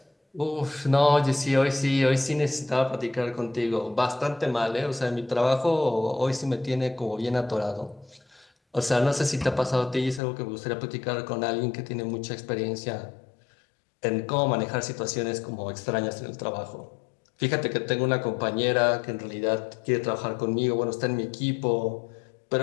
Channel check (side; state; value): right; drops out; at 10.2 s